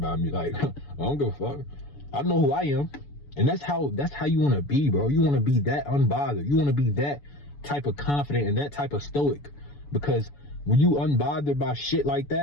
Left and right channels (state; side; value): late; right; 7.0 ms